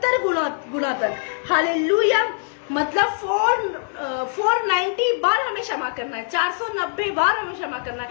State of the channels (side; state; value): right; silent; digital silence